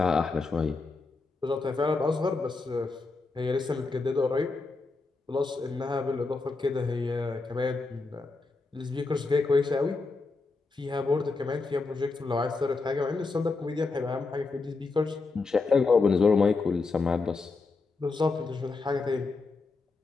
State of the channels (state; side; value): quieter; right; 3.9 dB